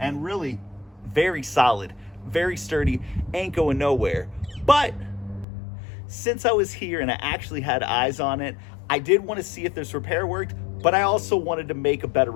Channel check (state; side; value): drops out; right; at 5.5 s